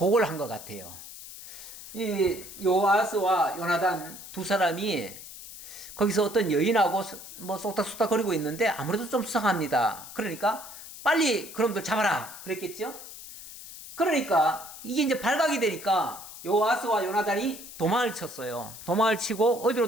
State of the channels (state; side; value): noise; left; hiss, 14 dB below the sound